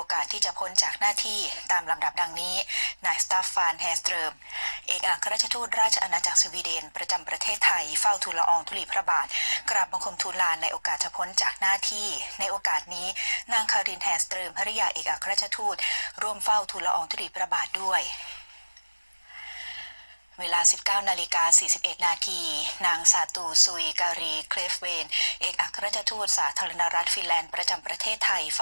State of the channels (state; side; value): inverted; both; correlation -1.00